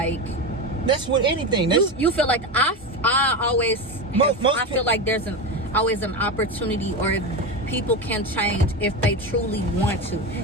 that's with anything. You feel like I always I feel like there's always an opportunity, or people can change if they truly want to.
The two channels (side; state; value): both; normal; correlation 0.18